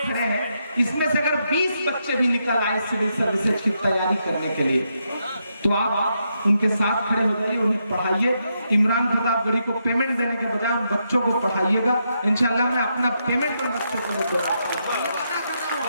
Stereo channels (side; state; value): both; inverted; correlation -0.81